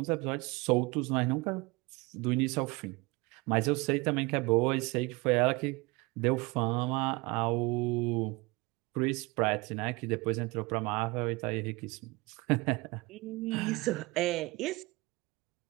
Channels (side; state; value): left; quieter; 24.3 dB